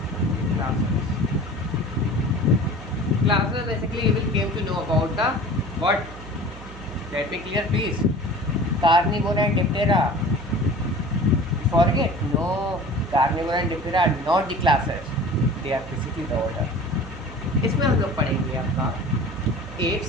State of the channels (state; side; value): noise; right; hum, 15 dB below the sound